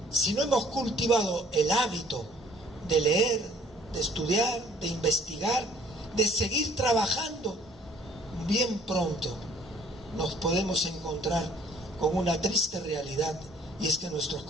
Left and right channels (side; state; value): both; normal; correlation 0.57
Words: si no hemos cultivado el hábito de leer, de estudiar, de investigar, de seguir trabajando, bien pronto nos podemos encontrar con una triste realidad, y es que nuestros